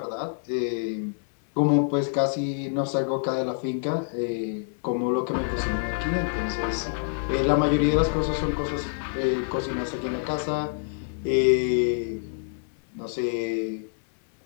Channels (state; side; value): silent; right; digital silence